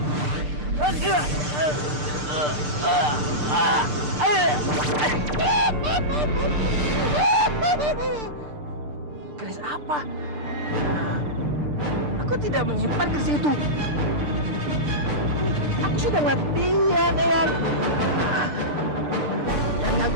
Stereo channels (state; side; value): late; left; 6.7 ms